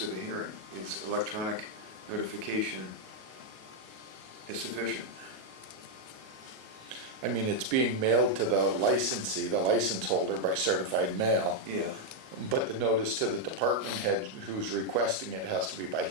of a hearing? Is electronic notification is sufficient? I mean, it's being mailed to the licensee, the license holder by certified mail, Yeah. but the notice to the department head who's requesting it has to be by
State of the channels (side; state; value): left; late; 37 ms